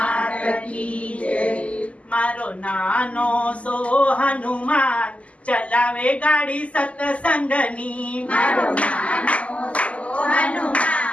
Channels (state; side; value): late; right; 0.065 ms